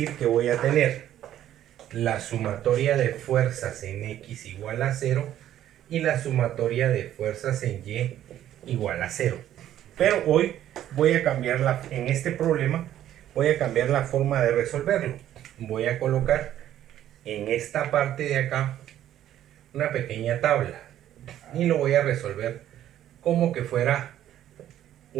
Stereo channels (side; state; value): left; quieter; 11.9 dB